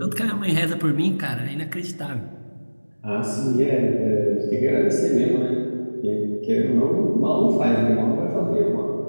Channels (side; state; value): both; inverted; correlation -1.00